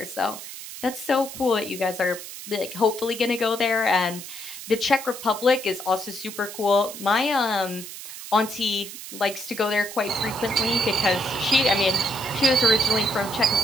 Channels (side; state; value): right; noise; hiss, 11 dB below the sound